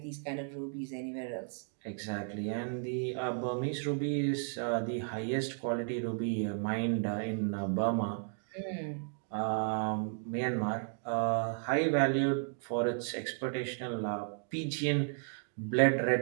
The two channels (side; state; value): left; silent; 55 dB below the other